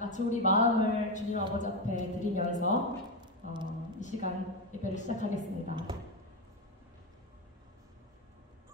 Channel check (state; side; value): normal; both; correlation 0.12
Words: 우리 마음을 주님 아버지 앞에 드리면서 이 시간 예배를 시작하겠습니다.